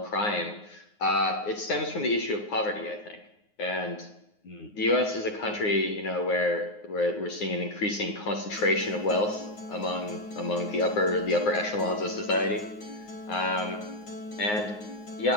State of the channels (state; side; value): late; right; 9.6 ms